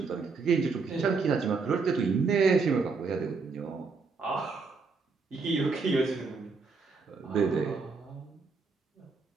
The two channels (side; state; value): left; quieter; 4.5 dB